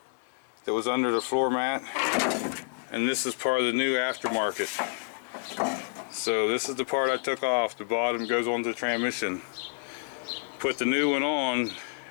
that was under the floor mat, and this is part of the new aftermarket. So this is the part I took off. The bottom goes onto the transmission. Put the new one on,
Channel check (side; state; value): right; silent; 59 dB below the other